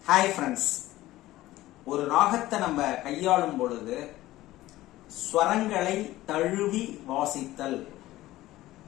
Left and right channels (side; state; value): right; quieter; 16.4 dB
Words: Hi friends, ஒரு ராகத்தை நம்ம கையாளும் பொழுது ஸ்வரங்களை தழுவி வாசித்தல்,